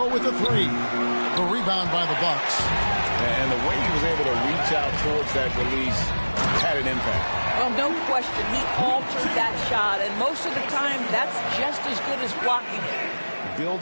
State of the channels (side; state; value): both; inverted; correlation -1.00